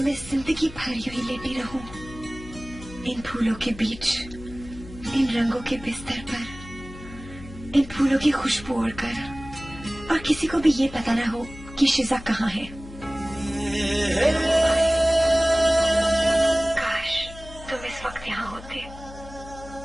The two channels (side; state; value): left; noise; hum, 16 dB below the sound